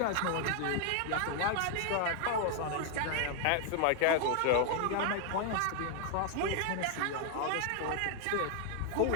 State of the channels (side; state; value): both; different; correlation 0.00